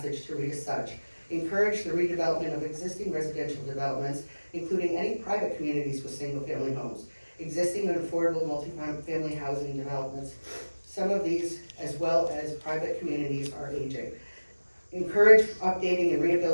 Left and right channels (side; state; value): both; inverted; correlation -1.00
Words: to read as such. Encourage the redevelopment of existing residential developments, including any private communities with single-family homes, existing and affordable multi-family housing developments. Some of these, as well as private communities, are aging. Encourage updating and